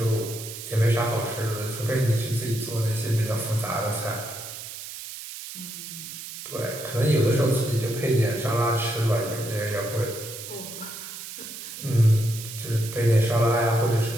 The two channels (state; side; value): noise; right; hiss, 11 dB below the sound